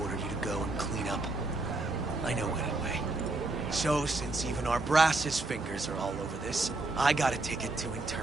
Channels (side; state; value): left; quieter; 3.0 dB